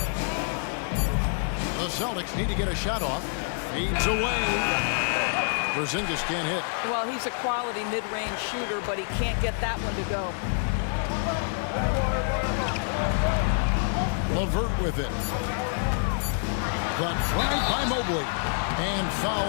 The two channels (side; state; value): right; silent; 60 dB below the other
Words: The Celtics need to get a shot off. Fades away. Porzingis can't hit. Well, he's a quality mid-range shooter, but he can't get that one to go. LeVert with it. The drive by Mobley. And foul